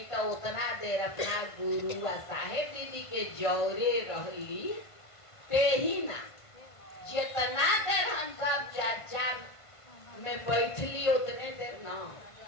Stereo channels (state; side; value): late; right; 1.5 ms